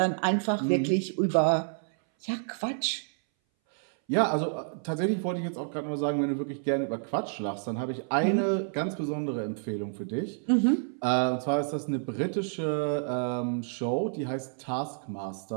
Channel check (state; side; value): silent; left; 58 dB below the other